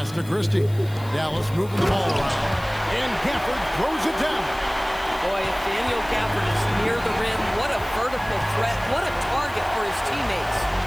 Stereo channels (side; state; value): left; noise; hiss, 21 dB below the sound